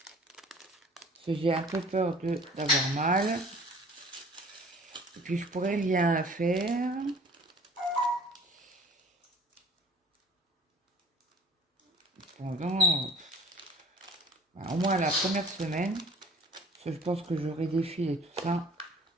parce que j'ai un peu peur d'avoir mal et puis je pourrais rien faire. Pendant au moins la première semaine, parce que je pense que j'aurai des fils et tout ça,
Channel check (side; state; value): both; normal; correlation 0.47